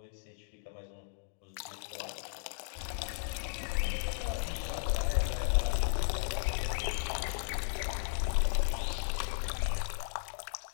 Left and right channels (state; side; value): silent; right; digital silence